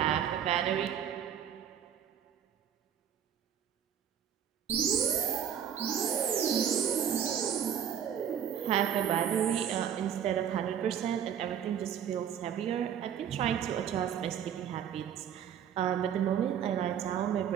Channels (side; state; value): left; quieter; 8.9 dB